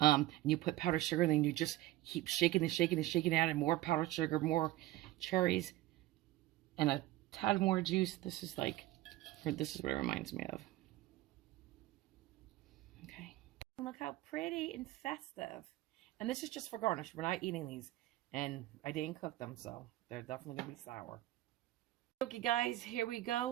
you put powdered sugar, and then you just keep shaking and shaking and shaking, adding more powdered sugar, more cherries, and a tad more juice. This is what it reminds me of. Okay. Look how pretty and festive. And this is just for garnish. We're not eating these. And I didn't cook them, so they're definitely going to be sour. Okay, guys, here we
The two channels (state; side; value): quieter; left; 16.2 dB